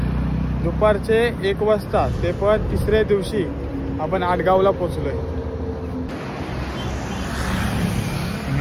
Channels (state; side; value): identical; both; correlation 1.00